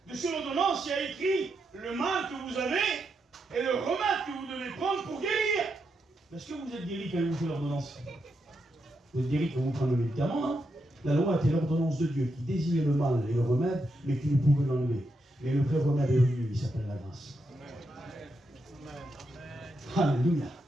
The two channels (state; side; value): normal; both; correlation 0.83